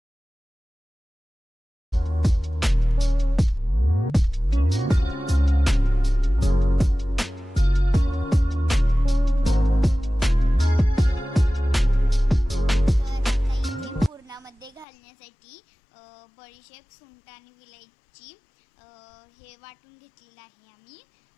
मध्ये घालण्यासाठी बडीशेप, सुंठ आणि विलायची हे वाटून घेतलेलं आहे आम्ही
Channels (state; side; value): drops out; right; at 14.9 s